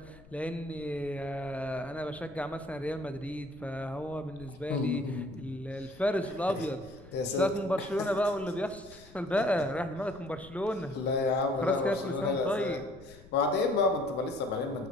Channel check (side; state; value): left; noise; rumble, 21 dB below the sound